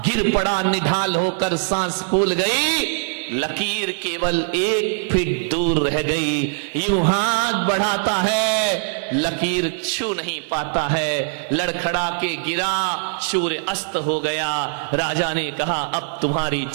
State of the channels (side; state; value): left; silent; digital silence